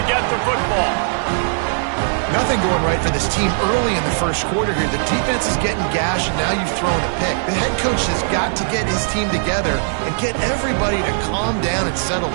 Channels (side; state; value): left; silent; 65 dB below the other